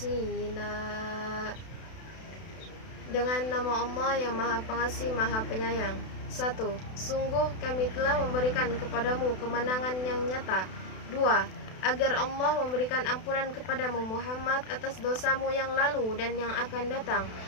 Dengan nama Allah yang Maha Pengasih, Maha Penyayang. 1. Sungguh kami telah memberikan kepadamu kemenangan yang nyata. 2. Agar Allah memberikan ampunan kepadamu Muhammad atas dosamu yang lalu dan yang akan datang,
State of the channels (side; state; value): right; late; 32 ms